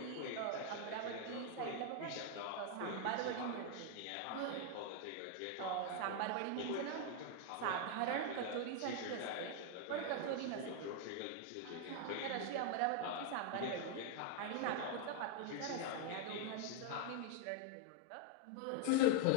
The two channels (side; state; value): both; different; correlation 0.00